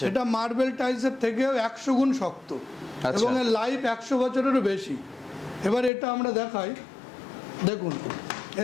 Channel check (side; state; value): right; drops out; at 5.9 s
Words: এটা মার্বেল টাইলসের থেকেও 100 গুণ শক্ত, এবং এর লাইফ 100 বছরেরও বেশি। এবার এটা আমরা দেখাই, দেখুন